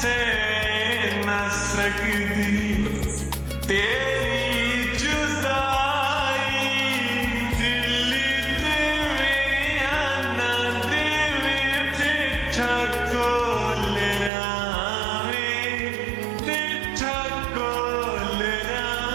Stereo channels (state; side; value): drops out; left; at 14.3 s